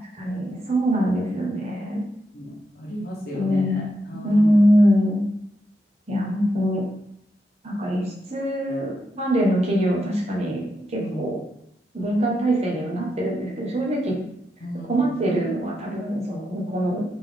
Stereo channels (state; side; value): normal; both; correlation 0.83